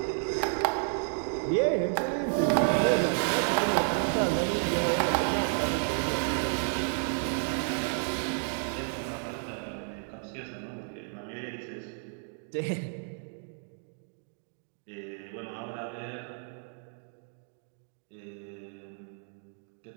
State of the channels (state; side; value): silent; left; 57 dB below the other